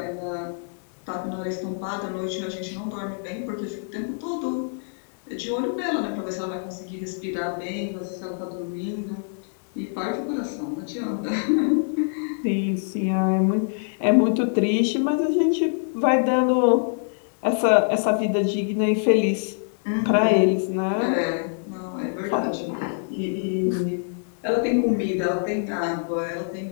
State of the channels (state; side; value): silent; right; digital silence